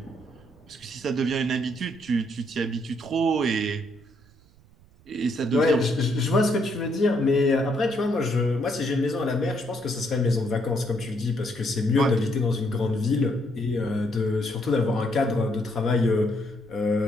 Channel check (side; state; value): right; noise; rumble, 27 dB below the sound